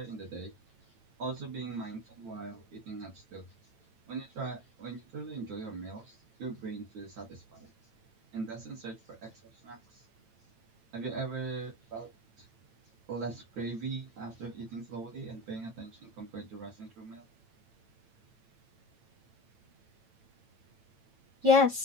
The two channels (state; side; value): late; left; 8.9 ms